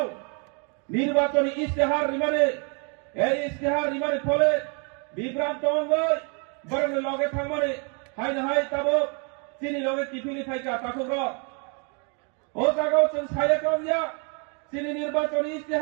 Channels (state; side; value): quieter; left; 36.9 dB